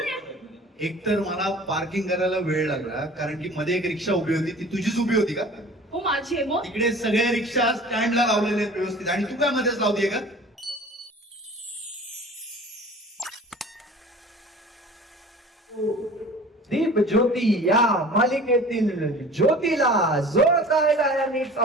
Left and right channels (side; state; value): both; normal; correlation 0.44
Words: आहे? एकतर मला पार्किंग करायला वेळ लागला कारण की मध्ये एक रिक्षा उभी होती, ती तुझीच उभी होती का? हो माझी आहे मग. तिकडे सगळे रिक्षा स्टँडला लावलेले आहेत व्यवस्थित आणि तू काय मध्येच लावतीये का? दीप ज्योती या मालिकेतील ज्योतीला जोरदार टाळ्यांनीच